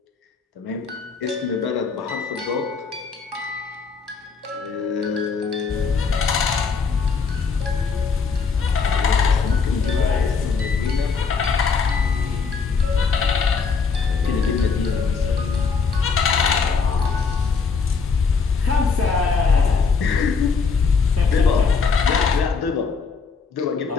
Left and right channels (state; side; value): quieter; right; 5.2 dB